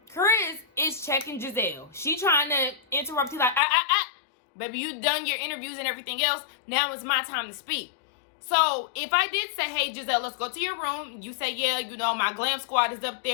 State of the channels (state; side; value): drops out; right; at 3.6 s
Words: Chris is checking Giselle. She trying to interrupt. He's like, baby, you done your interviews and everything else. Now it's my time to speak. So, if I did say, hey, Giselle, let's go to your room. You say, yeah, you know, my glam squad is up